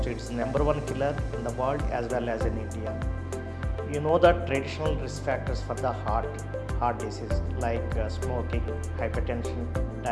it's number one killer in the world as well as in India. You know that traditional risk factors for the heart disease like smoking, hypertension,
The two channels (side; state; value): both; identical; correlation 1.00